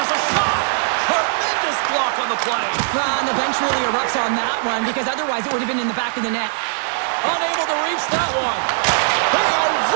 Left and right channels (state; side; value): silent; left; 66 dB below the other